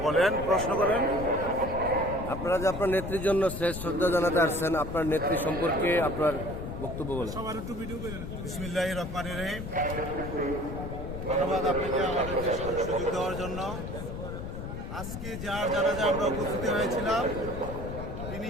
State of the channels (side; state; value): left; noise; rumble, 7 dB below the sound